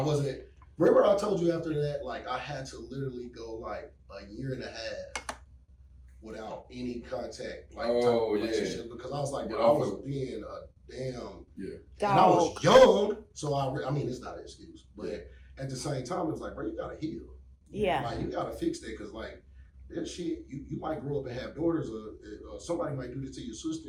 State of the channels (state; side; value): identical; both; correlation 1.00